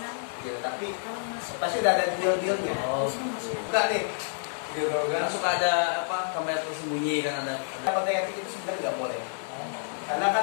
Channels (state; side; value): silent; right; digital silence